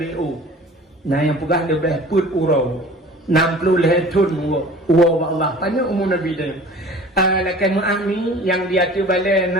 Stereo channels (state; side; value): normal; both; correlation 0.44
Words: na yang pegah lebih put urau 60 le tahun wa Allah panjang umur Nabi dia lakan mu'ami yang dia tu balik